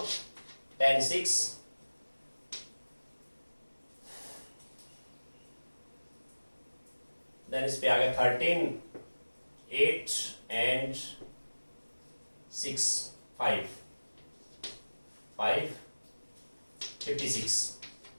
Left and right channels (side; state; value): both; inverted; correlation -1.00